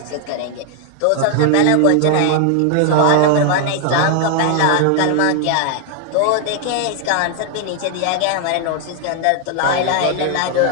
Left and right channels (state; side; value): different; both; correlation 0.00